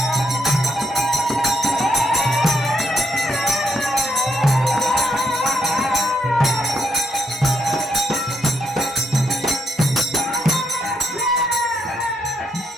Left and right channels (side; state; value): both; normal; correlation 0.78